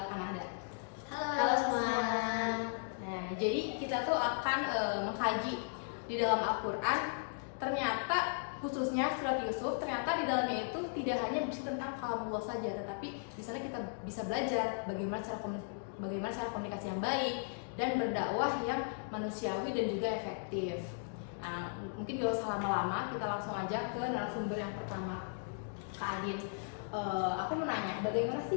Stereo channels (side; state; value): right; silent; digital silence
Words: Kanada. Halo semua. Nah, jadi kita tuh akan mengkaji di dalam Al-Quran. Ternyata khususnya surat Yusuf, ternyata di dalamnya itu tidak hanya berisi tentang kalamullah saja, tetapi di sana kita bisa belajar bagaimana cara komunikasi yang baik dan berdakwah yang manusiawi dan juga efektif. Nah, mungkin gak usah lama-lama, kita langsung aja ke narasumber yang pertama, Kak Adin. Aku mau nanya, bagaimana